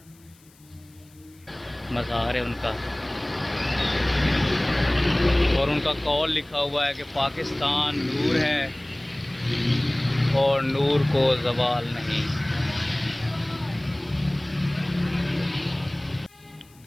मज़ार है उनका और उनका कौल लिखा हुआ है कि पाकिस्तान नूर है और नूर को ज़वाल नहीं।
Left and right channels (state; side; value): noise; left; hiss, 29 dB below the sound